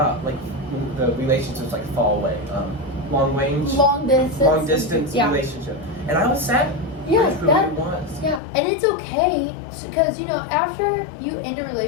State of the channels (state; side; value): drops out; right; at 8.4 s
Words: like the relationships like far away. Long range. Long distance relationship. And I was sad. Yeah, that was. Yeah, and it's okay because after you end a